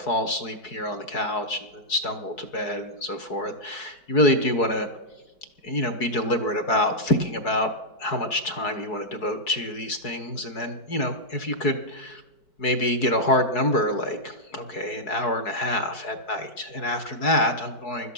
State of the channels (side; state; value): right; late; 4.7 ms